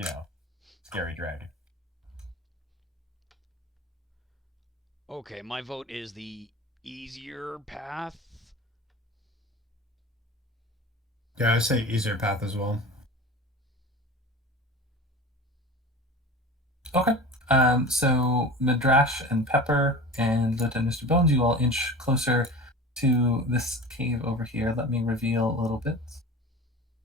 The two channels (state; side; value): normal; both; correlation 0.35